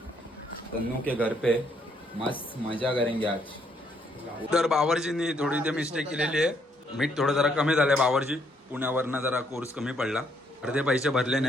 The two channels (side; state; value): both; normal; correlation 0.71